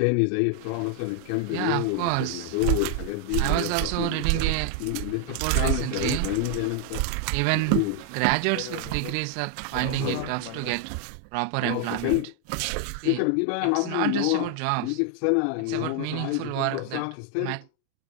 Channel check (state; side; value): different; both; correlation 0.00